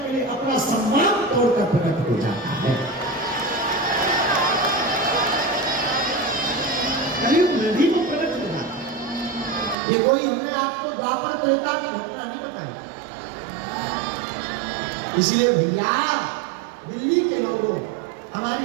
लिए अपना सम्मान तोड़कर प्रकट हो जाता है। कलयुग में भी वो प्रकट हो जाता है। ये कोई हमने आपको द्वापर त्रेता की घटना नहीं बताई। इसलिए भैया, दिल्ली के लोगों,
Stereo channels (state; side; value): drops out; left; at 9.8 s